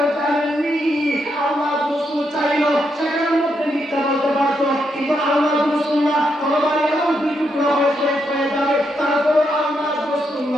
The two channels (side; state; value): both; normal; correlation 0.80